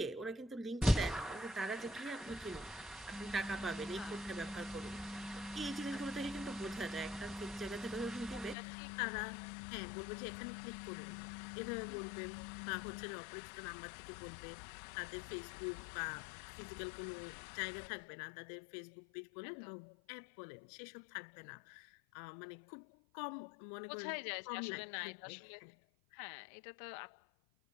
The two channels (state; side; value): drops out; right; at 8.6 s